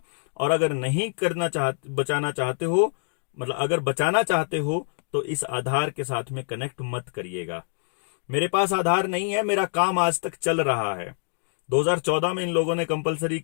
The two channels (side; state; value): right; silent; digital silence